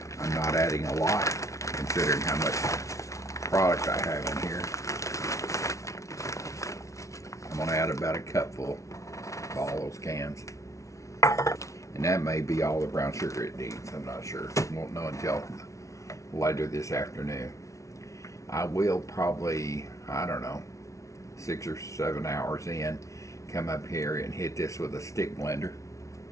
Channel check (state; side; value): late; right; 0.15 ms